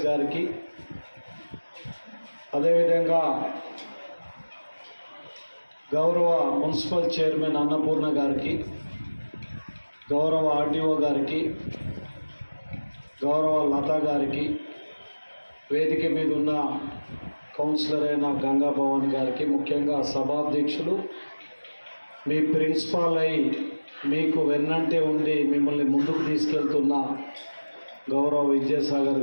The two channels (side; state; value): both; inverted; correlation -1.00